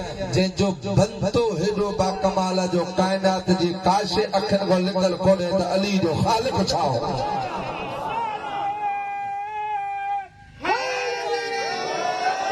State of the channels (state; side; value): identical; both; correlation 1.00